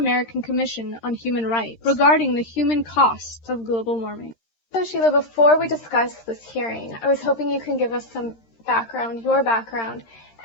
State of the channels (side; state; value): right; late; 13 ms